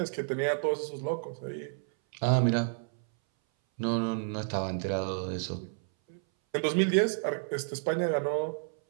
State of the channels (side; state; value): left; silent; 57 dB below the other